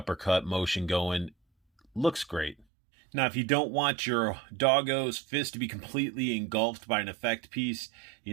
motion going. Looks great. Now, if you don't want your Doggo's fist to be completely engulfed by an effect piece,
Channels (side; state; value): left; drops out; at 2.7 s